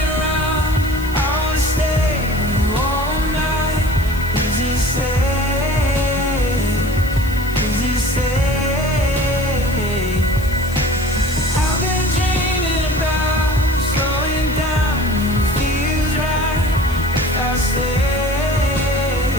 around, I wanna stay with you all night. Is it safe? Is it safe? I've been dreaming about slowing down when it feels right. If I stay,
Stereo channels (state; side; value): noise; left; hiss, 18 dB below the sound